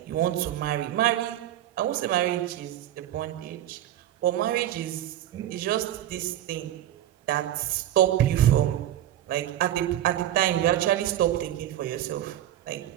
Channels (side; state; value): left; quieter; 12.5 dB